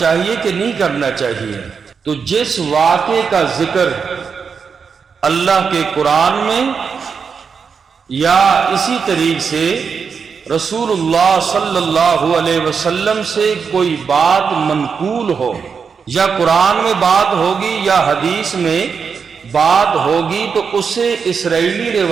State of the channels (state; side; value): quieter; left; 6.0 dB